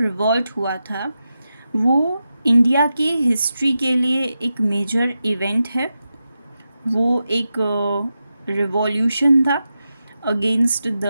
रिवॉल्ट हुआ था वो इंडिया की हिस्ट्री के लिए एक मेजर इवेंट है। वो एक रिवॉल्यूशन था अगेंस्ट द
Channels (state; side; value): inverted; both; correlation -0.90